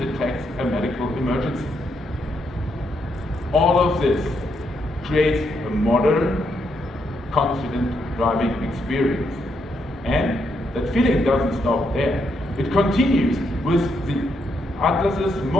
a medical emergency. All of this creates a modern, confident driving experience. And that feeling doesn't stop there. It continues with the Atlas's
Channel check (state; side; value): normal; both; correlation 0.78